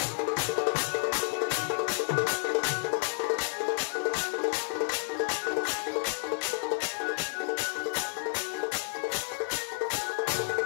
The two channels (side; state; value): right; silent; digital silence